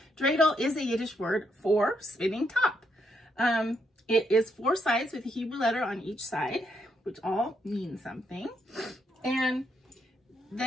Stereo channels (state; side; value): normal; both; correlation 0.77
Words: dreidel is a Yiddish word for spinning top. It is 4 sides with a Hebrew letter on each side, which all mean something. And